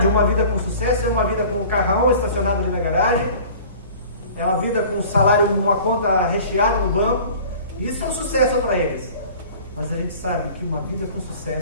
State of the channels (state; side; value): inverted; both; correlation -0.45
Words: uma vida com sucesso é uma vida com um carrão estacionado ali na garagem, é uma vida com um salário, uma conta recheada no banco. Isso é um sucesso para eles. Mas a gente sabe que uma vida com